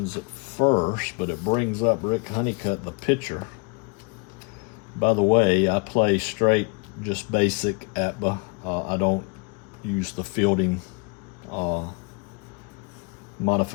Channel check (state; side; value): quieter; right; 31.1 dB